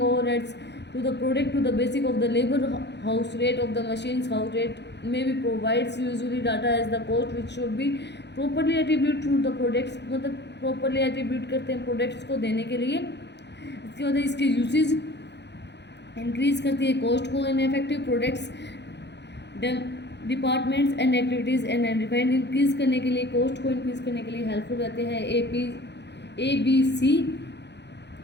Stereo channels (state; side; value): late; right; 0.50 ms